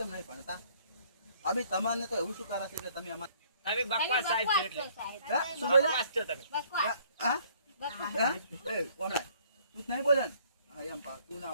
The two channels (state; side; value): inverted; both; correlation -0.60